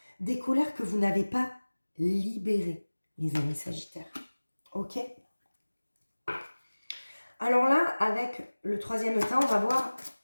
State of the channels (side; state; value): both; inverted; correlation -1.00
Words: que vous n'avez pas libérées, les amis Sagittaires, ok? Alors là, avec le troisième temps, on va voir